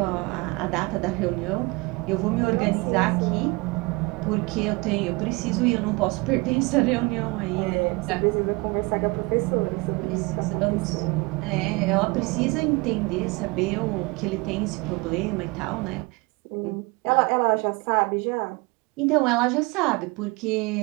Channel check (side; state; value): left; quieter; 25.9 dB